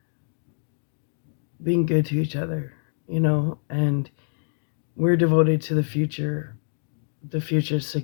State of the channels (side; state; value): right; silent; digital silence